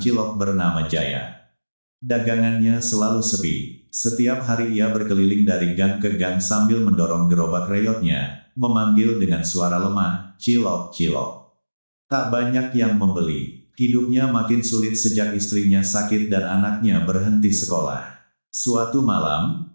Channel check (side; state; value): both; inverted; correlation -1.00